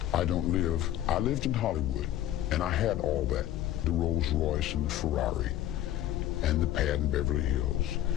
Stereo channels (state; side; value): quieter; right; 12.8 dB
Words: I lived in Hollywood, and I had all that. The Rolls Royce and the Ferrari and the pad in Beverly Hills.